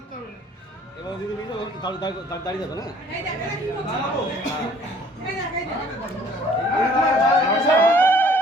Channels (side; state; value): both; normal; correlation 0.56